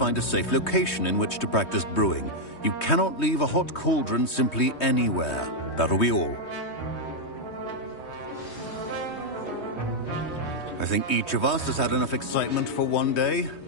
a safe location in which to practice brewing. You cannot leave a hot cauldron simply anywhere. That'll be all. I think each of us has had enough excitement for one day.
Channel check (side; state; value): right; late; 3.2 ms